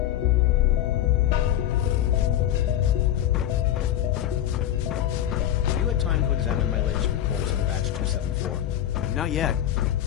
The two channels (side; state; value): right; quieter; 11.6 dB